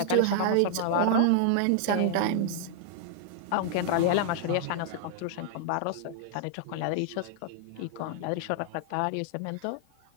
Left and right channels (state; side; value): different; both; correlation -0.01